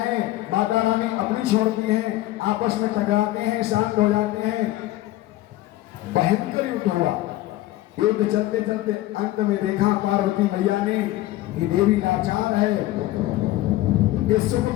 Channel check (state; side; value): quieter; right; 16.1 dB